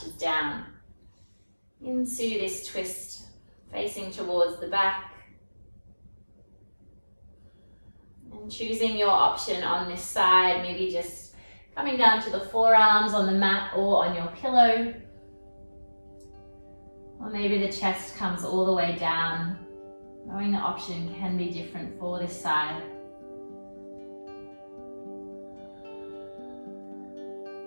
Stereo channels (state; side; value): inverted; both; correlation -1.00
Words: down into this twist, facing towards the back. And choosing your option on this side, maybe just coming down to the forearms on the mat or on your pillow. Or maybe the chest comes all the way down. Knowing the option can be different for this side.